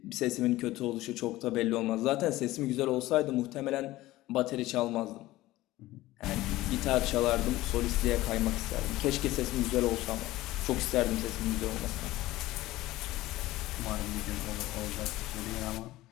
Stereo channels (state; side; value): quieter; right; 17.3 dB